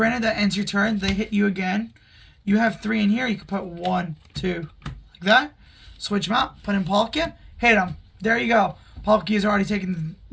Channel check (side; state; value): both; identical; correlation 1.00